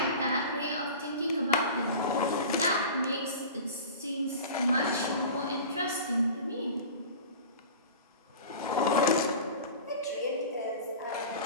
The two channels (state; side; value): inverted; both; correlation -0.36